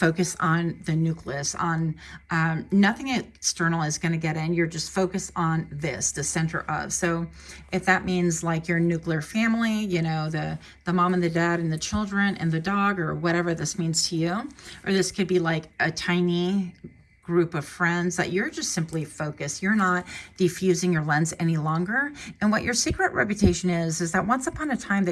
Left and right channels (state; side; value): identical; both; correlation 1.00